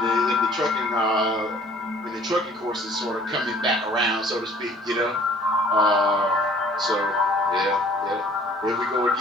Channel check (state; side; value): normal; both; correlation 0.54